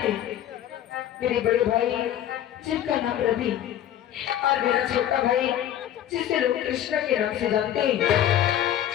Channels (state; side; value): quieter; right; 11.3 dB